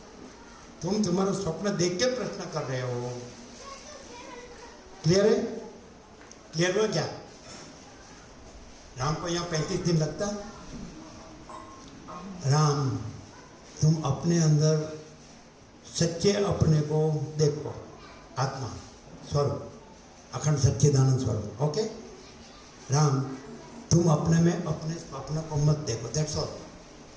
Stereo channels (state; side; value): identical; both; correlation 1.00